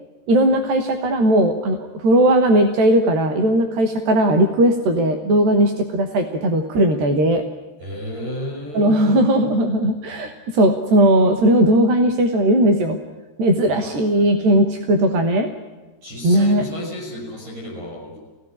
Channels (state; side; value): late; left; 13 ms